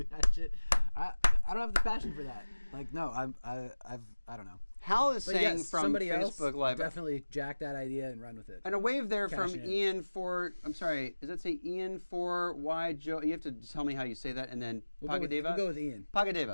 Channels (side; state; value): both; inverted; correlation -1.00